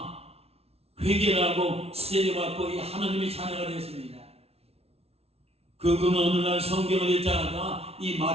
회개를 하고 세례받고 이 하나님의 자녀가 되었습니다. 그는 어느 날 성경을 읽다가 이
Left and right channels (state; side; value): late; left; 0.30 ms